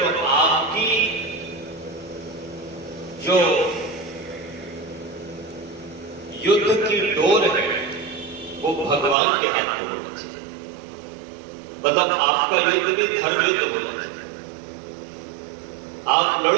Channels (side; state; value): left; drops out; at 9.2 s